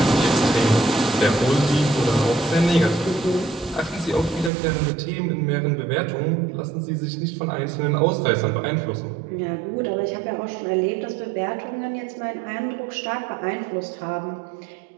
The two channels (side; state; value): left; drops out; at 4.5 s